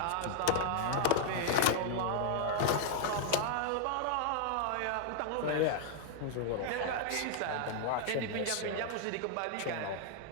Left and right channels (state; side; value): different; both; correlation -0.01